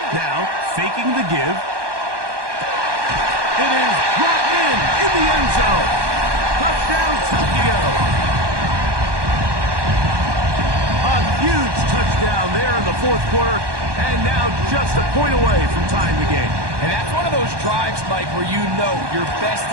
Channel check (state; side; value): late; left; 1.2 ms